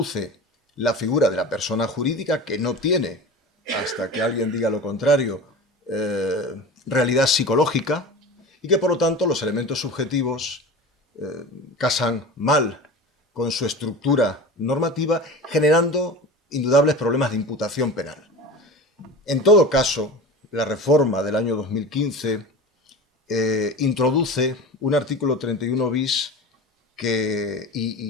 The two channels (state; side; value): normal; both; correlation 0.33